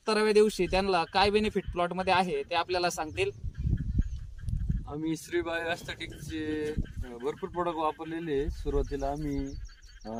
दिवशी त्यांना काय बेनिफिट प्लॉटमध्ये आहे ते आपल्याला सांगतील. आम्ही श्री बायोस्थेटिकचे भरपूर प्रोडक्ट वापरलेले. सुरुवातीला आम्ही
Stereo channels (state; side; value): identical; both; correlation 1.00